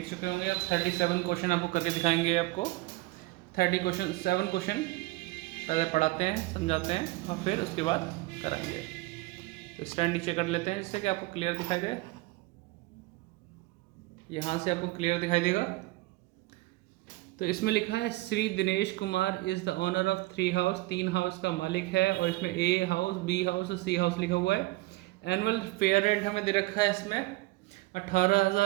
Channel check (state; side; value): quieter; left; 20.4 dB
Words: चुके होंगे। अब 37 क्वेश्चन आपको करके दिखाएंगे। आपको 7 क्वेश्चन पहले पढ़ाते हैं, समझाते हैं और फिर उसके बाद कराएंगे। तो स्टैंड नीचे कर लेते हैं जिससे कि आपको क्लियर दिखाई दे। यहाँ से आपको क्लियर दिखाई देगा। तो इसमें लिखा है Shri Dinesh Kumar is the owner of 3 house. 3 house का मालिक है और इसमें ए हाउस, बी हाउस और सी हाउस लिखा हुआ है। एनुअल फेयर रेंट हमें दे रखा है इसमें